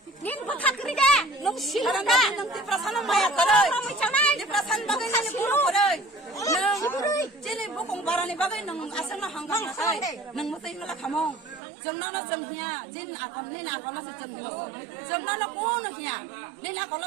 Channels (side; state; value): left; drops out; at 11.6 s